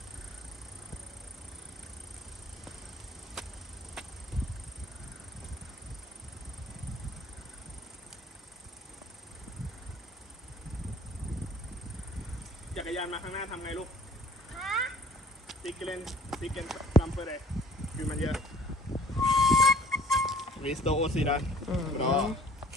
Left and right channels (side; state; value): both; normal; correlation 0.53